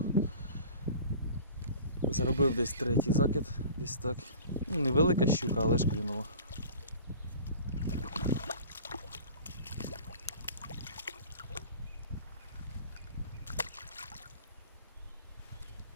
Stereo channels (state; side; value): inverted; both; correlation -0.42